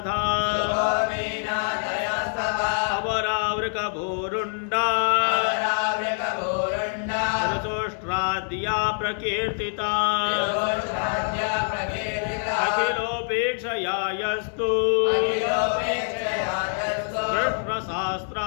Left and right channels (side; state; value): right; silent; 62 dB below the other